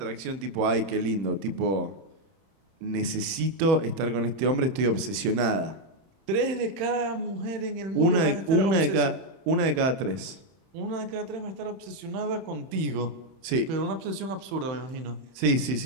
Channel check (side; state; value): left; late; 31 ms